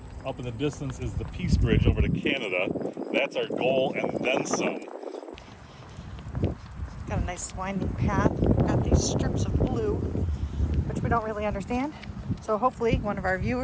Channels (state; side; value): identical; both; correlation 1.00